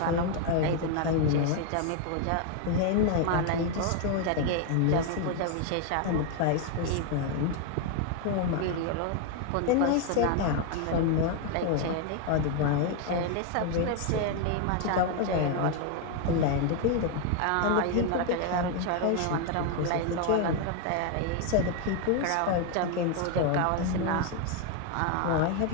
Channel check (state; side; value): different; both; correlation 0.01